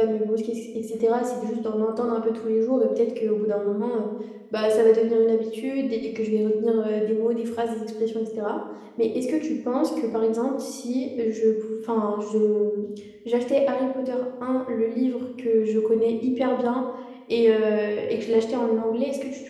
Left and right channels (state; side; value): identical; both; correlation 1.00